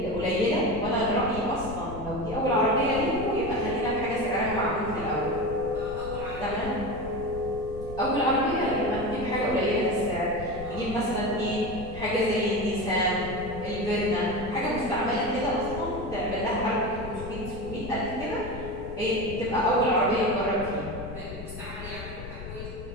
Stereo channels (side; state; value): left; noise; rumble, 11 dB below the sound